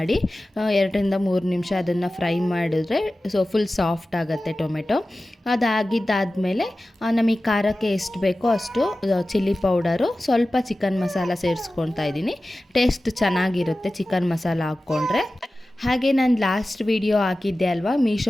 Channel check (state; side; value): normal; both; correlation 0.95